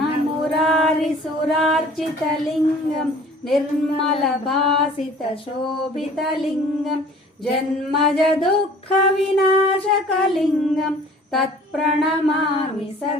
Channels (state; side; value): normal; both; correlation 0.49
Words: निर्मलभासितशोभितलिङ्गं जन्मजदुःखविनाशकलिङ्गं तत्प्रणमामि